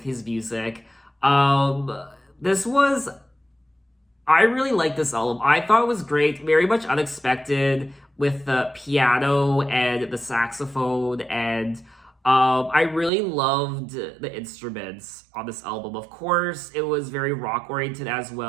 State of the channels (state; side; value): drops out; left; at 13.1 s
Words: his music. I really like this album. I thought it was great, very much unexpected with the piano and the saxophone, and I really loved the instruments on this album. Of course, it was very rock oriented as